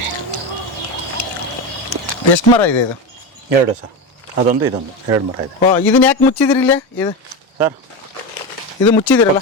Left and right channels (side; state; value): both; normal; correlation 0.19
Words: ಎಷ್ಟು ಮರ ಇದೆ ಇದು? 2 ಸರ್, ಅದೊಂದು ಇದೊಂದು 2 ಮರ ಇದೆ. ಇದನ್ನ ಯಾಕೆ ಮುಚ್ಚಿದ್ರಿ ಇಲ್ಲೇ ಇದು ಸರ್? ಇದು ಮುಚ್ಚಿದಿರಲ್ಲ,